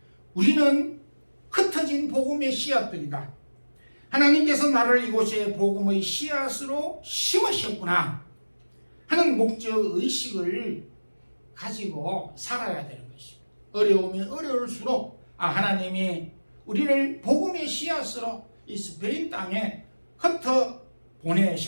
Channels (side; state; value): both; inverted; correlation -1.00